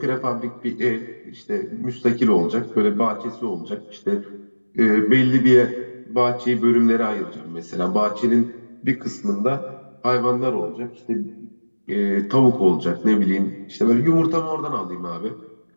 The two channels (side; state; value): both; inverted; correlation -1.00